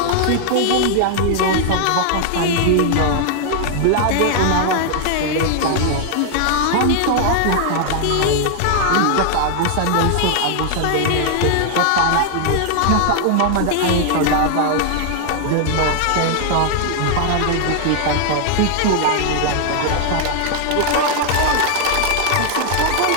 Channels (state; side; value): different; both; correlation 0.00